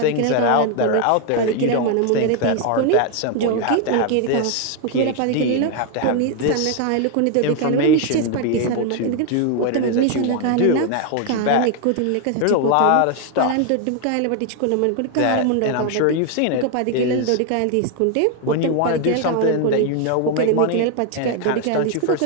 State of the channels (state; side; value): different; both; correlation 0.01